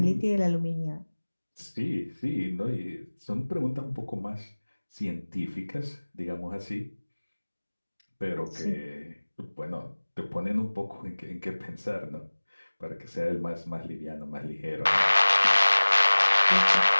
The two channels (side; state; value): both; inverted; correlation -1.00